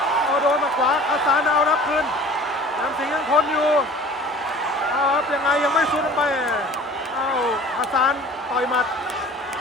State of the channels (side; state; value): both; normal; correlation 0.45